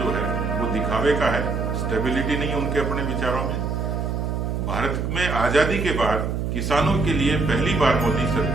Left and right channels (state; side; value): noise; right; hum, 1 dB below the sound